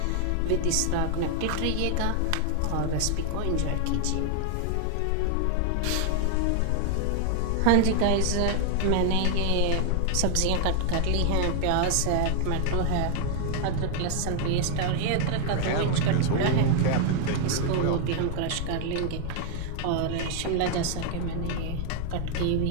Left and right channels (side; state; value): both; different; correlation 0.00